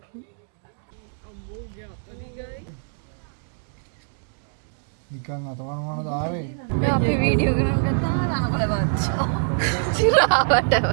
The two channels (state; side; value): silent; left; digital silence